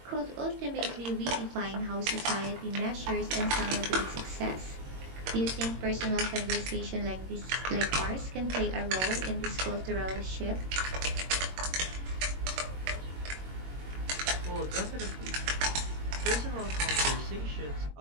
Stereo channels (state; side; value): late; left; 22 ms